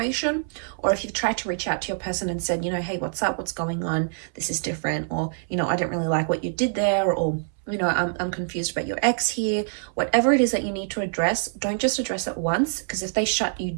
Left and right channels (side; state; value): left; silent; 62 dB below the other